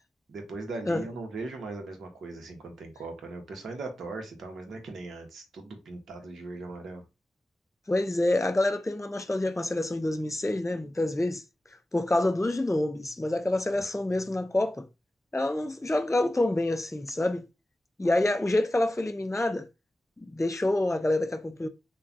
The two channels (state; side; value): normal; both; correlation 0.94